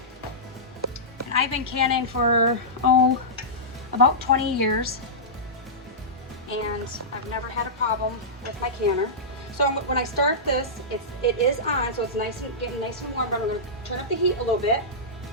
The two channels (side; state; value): both; normal; correlation -0.16